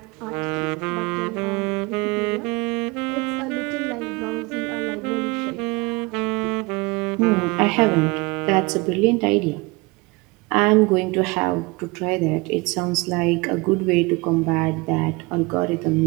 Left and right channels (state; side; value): quieter; left; 25.5 dB